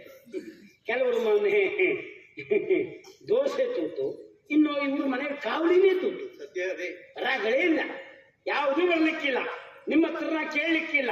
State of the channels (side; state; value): both; identical; correlation 1.00